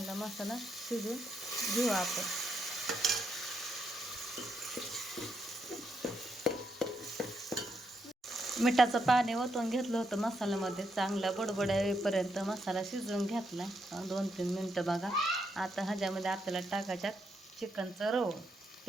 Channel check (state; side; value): normal; both; correlation 0.80